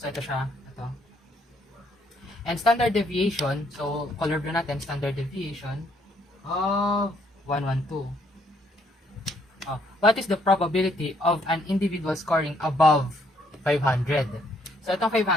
ito siya. Ito. And standard deviation, so, color blue natin, standard deviation of 112. What is the probability of an individual scoring above 500? So, itong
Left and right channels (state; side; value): normal; both; correlation 0.69